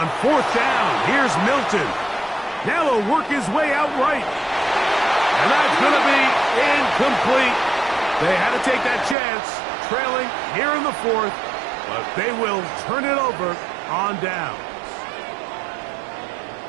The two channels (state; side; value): drops out; left; at 9.2 s